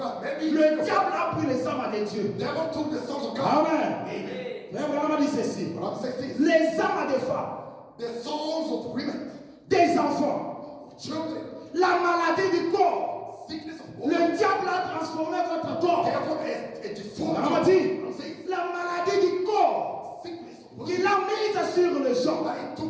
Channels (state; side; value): identical; both; correlation 1.00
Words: Maybe Le diable a pris les âmes de Dieu. never took the sons of God. Amen. Frère Branham a dit ceci, But I'm saying this, les âmes des femmes, the sons of women, des enfants, children, la maladie du corps. sickness of Le women, diable a transformé votre corps. devil is a deformed. Branham a dit, I'm saying la maladie du corps sickness of women. qu'il a mise sur les gens. That he